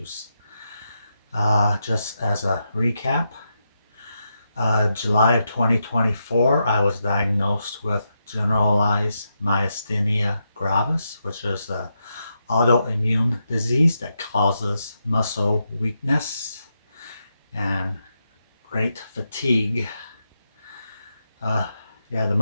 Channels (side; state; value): both; inverted; correlation -0.84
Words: Just as a recap, July of 2024, I was diagnosed with generalized myasthenia gravis, which is an autoimmune disease that causes muscle weakness and great fatigue. Uh, yeah, the